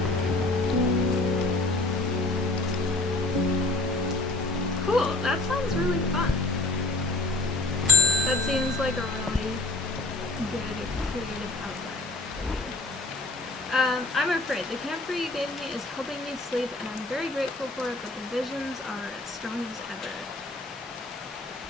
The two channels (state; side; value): quieter; right; 3.1 dB